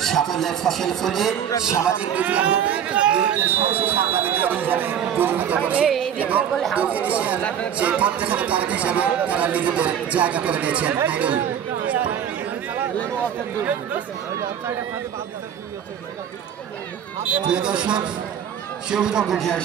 সাফল্যের ফসল ফলিয়ে সামাজিক বিপ্লব সেই প্রত্যেকের তারক হিসাবে তারা নিজেদের জায়গা করে দিয়েছেন। প্রিয় দর্শক, সবুজ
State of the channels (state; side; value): quieter; left; 9.0 dB